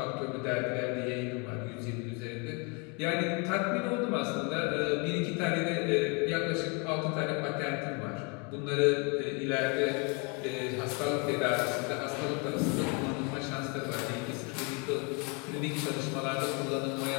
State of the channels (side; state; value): right; quieter; 31.7 dB